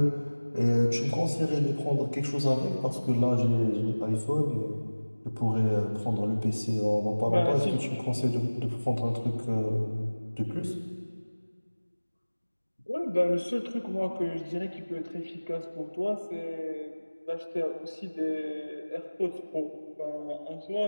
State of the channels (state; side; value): inverted; both; correlation -1.00